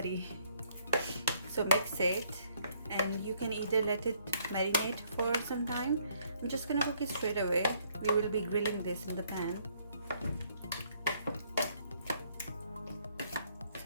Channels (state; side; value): inverted; both; correlation -0.67